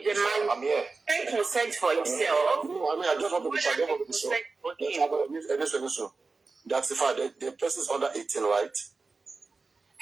a man. I'm here. Take consent for himself. No, I just want to be sure. Listen. That's fine. The person is under 18, right?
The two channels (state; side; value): quieter; left; 4.0 dB